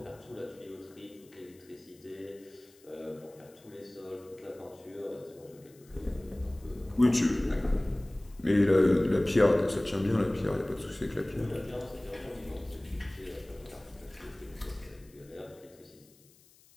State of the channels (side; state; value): left; noise; hiss, 28 dB below the sound